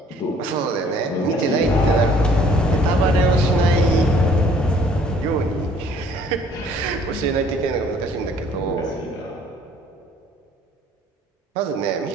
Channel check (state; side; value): normal; both; correlation 0.58